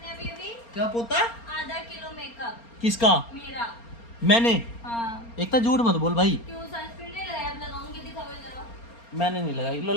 अभी। क्या पोता है? आधा किलो मेकअप किसका? मेरा। मैंने? हाँ। एक तो झूठ मत बोल भाई। क्यों सनस्क्रीन नहीं लगाया? अब लगाऊंगी, दिखाओ जरा। मैंने नहीं लगाई, लो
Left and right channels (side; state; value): right; late; 4.3 ms